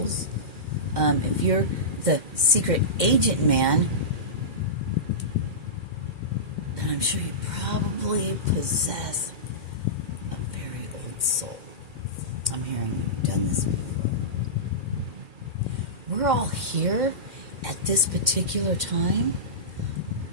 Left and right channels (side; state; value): left; late; 2.1 ms